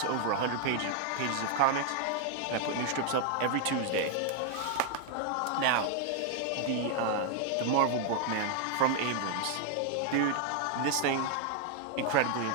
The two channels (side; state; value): both; different; correlation 0.00